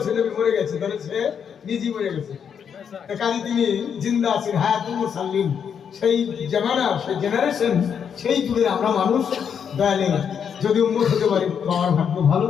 নবী মরে গেছে, তাহলে সে নিজেই মরে গেছে। কাজে তিনি জিন্দা আছেন, হায়াতুল মুরসালিন, সেই জামানা, সেই জেনারেশন, সেই যুগের আমরা মানুষ। দয়ালে যদি উন্মত হতে পারি আমার ভাগ্য ভালো,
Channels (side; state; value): right; quieter; 7.5 dB